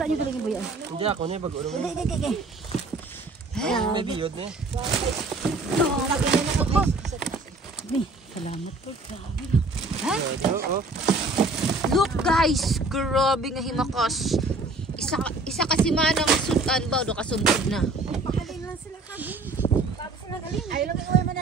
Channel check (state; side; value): quieter; left; 3.1 dB